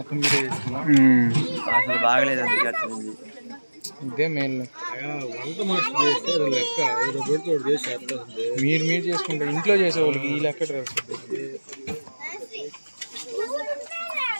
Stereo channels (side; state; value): both; inverted; correlation -1.00